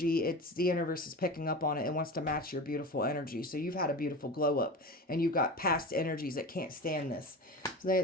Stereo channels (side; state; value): both; normal; correlation 0.30